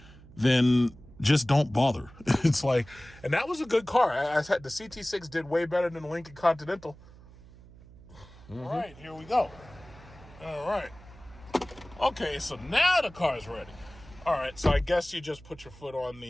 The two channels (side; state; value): right; noise; hum, 21 dB below the sound